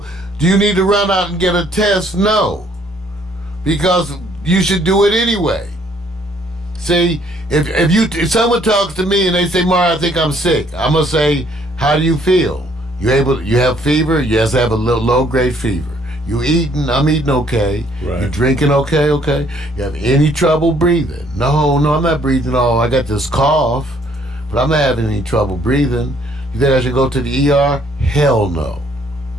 do you need to run out and get a test? No, because you should do it anyway. See, if someone talks to me and they say, "Mar, I think I'm sick," I'm gonna say, "How do you feel? You have fever?" Yes, I have a little low-grade fever. You eating? I'm eating okay. Right. You drinking okay? Okay. You have any trouble breathing? No, I'm not breathing. Oh, I got this cough, but I'm not having any trouble breathing. You think I should go to the ER? Hell no.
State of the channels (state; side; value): normal; both; correlation 0.64